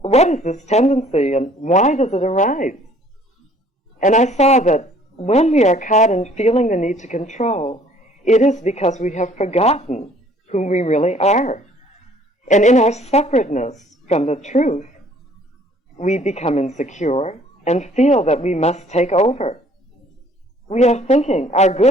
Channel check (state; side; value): normal; both; correlation 0.57